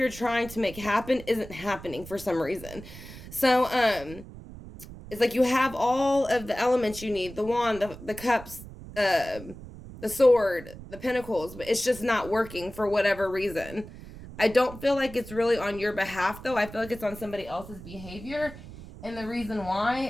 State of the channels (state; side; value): noise; right; rumble, 15 dB below the sound